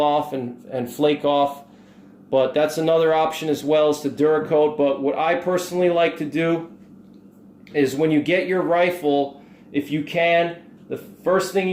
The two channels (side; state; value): both; identical; correlation 1.00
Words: off and flake off. But that's another option as well, as the Duracoat. But what I personally like to do is, when you get your rifle, if you can, the first thing